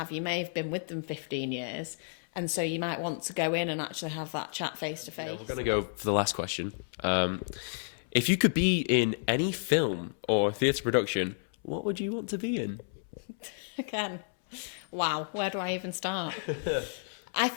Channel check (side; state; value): right; silent; 57 dB below the other